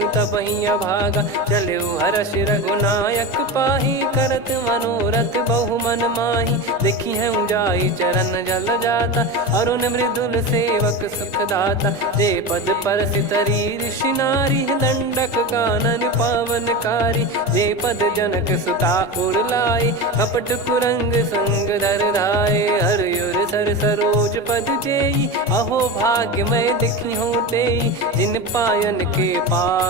तबही अभागा चले हर्ष रघुनायक पाही करत मनोरथ बहु मन माही देखी है जाई चरण जल जाता अरुण मृदुल सेवक सुखदाता जे पद पर सितरी ऋषि नारी दंडक कानन पावनकारी जे पद जनक सुता उर लाए कपट कुरंग संग धर धाये हरियुर सर सरोज पद जेई अहो भाग्य मैं दिखी हूँ तेई जिन पायन के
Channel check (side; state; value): both; normal; correlation 0.23